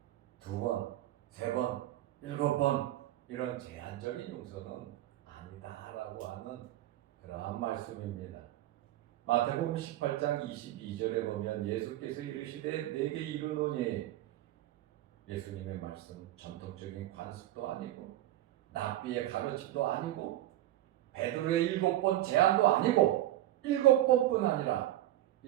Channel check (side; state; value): left; quieter; 14.3 dB